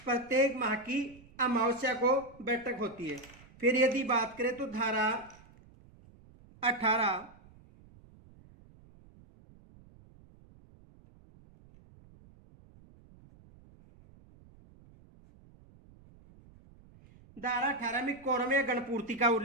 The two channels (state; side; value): noise; right; rumble, 25 dB below the sound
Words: प्रत्येक माह की अमावस्या को बैठक होती है। फिर यदि बात करें तो धारा 18 धारा 18 में कोरम या गणपूर्ति का